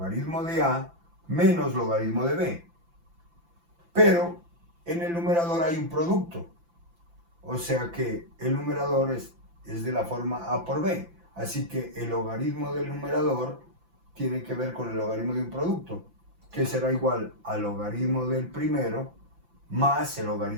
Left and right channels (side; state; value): left; late; 5.9 ms